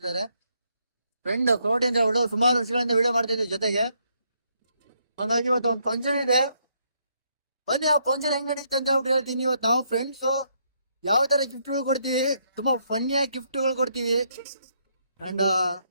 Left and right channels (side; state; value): both; inverted; correlation -0.74